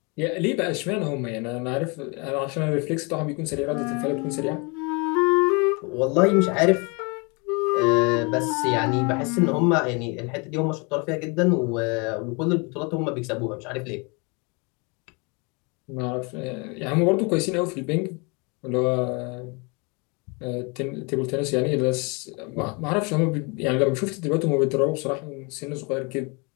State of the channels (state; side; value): quieter; right; 30.9 dB